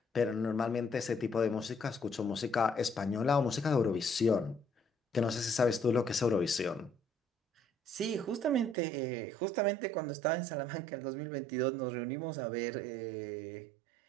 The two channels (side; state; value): left; drops out; at 8.8 s